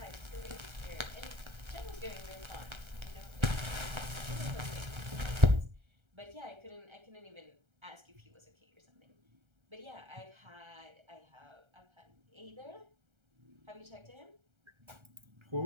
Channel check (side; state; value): left; late; 1.3 ms